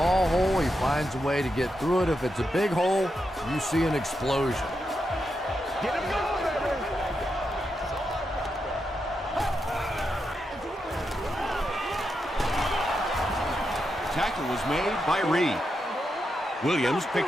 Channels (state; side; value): normal; both; correlation 0.85